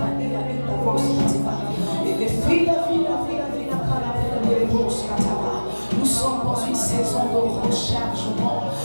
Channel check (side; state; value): both; inverted; correlation -1.00